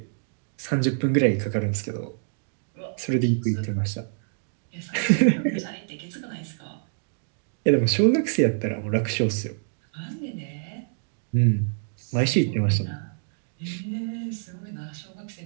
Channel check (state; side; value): silent; left; digital silence